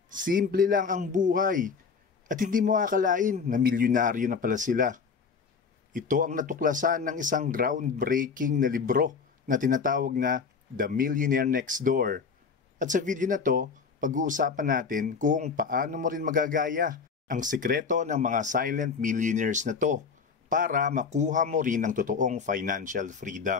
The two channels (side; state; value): right; quieter; 5.5 dB